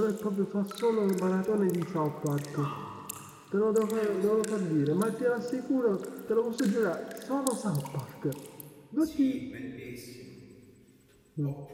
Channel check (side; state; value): both; identical; correlation 1.00